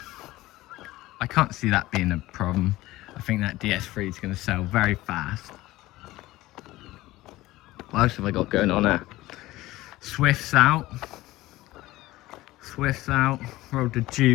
I can't see that being a problem. I think that DS3 is going to sell very fast. What else have I got going on there? Swift's out. Swift's out. Rolled the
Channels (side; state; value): right; quieter; 17.7 dB